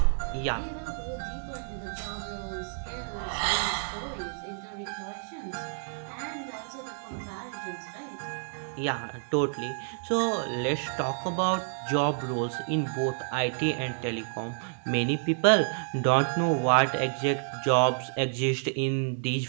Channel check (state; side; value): silent; left; digital silence